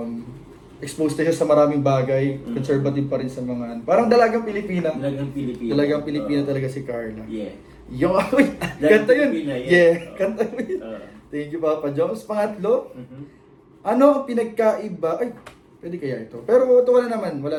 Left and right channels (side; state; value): both; identical; correlation 1.00